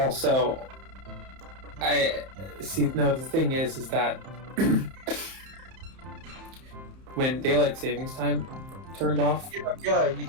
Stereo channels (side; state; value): left; late; 31 ms